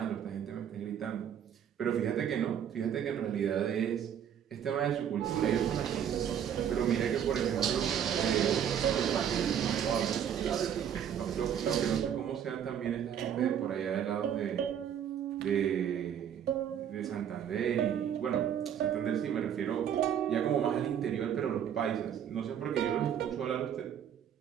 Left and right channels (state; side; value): quieter; left; 9.1 dB